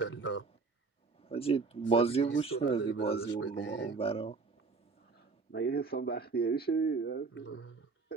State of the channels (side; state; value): left; quieter; 4.5 dB